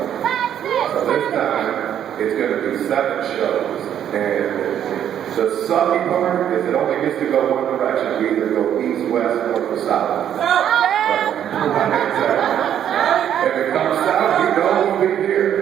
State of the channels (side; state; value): left; quieter; 9.9 dB